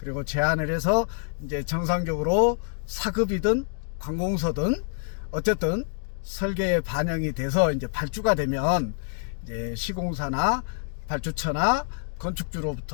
제안을 해서 이제 정상적으로 사급이든 관공서든 어쨌든 설계에 반영이 돼서 이제 발주가 되면 이제 시공사나 발주처나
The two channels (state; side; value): silent; right; 60 dB below the other